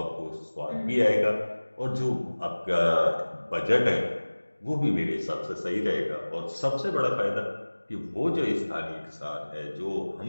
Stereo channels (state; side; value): inverted; both; correlation -1.00